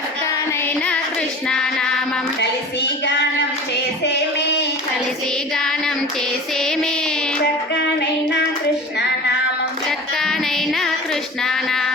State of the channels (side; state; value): both; normal; correlation 0.36